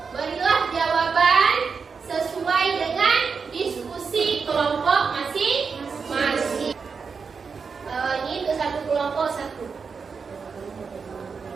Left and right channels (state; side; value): quieter; left; 5.4 dB